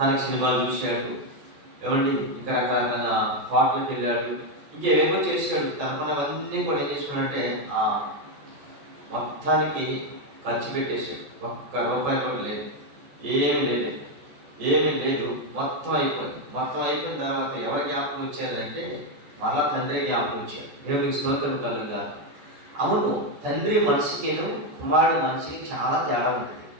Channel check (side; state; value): left; late; 14 ms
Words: సినిమాలు చూశాడు, ఏమండి ఇంకా రకరకాల పాటలకు వెళ్ళాడు, ఇంకేమో చేశాడు. తనకున్నవన్నీ కూడా ఏం చేశాడంటే ఆ మొత్తానికి ఖర్చు పెట్టేశాడు. ఒక్క రూపాయి కూడా లేదు, ఏమీ లేదు. మొత్తం అయిపోయిన తర్వాత ఎవరి జ్ఞాపకం వచ్చారంటే మళ్ళా తండ్రి జ్ఞాపకం వచ్చాడు. దేవునికి స్తోత్రం కలుగుగాక. అవును, తండ్రి మనిషికిను కుమారుడు మనిషికి చాలా తేడా ఉంటుంది.